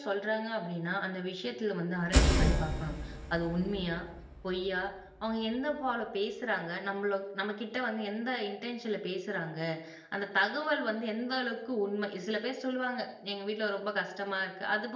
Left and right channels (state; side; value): identical; both; correlation 1.00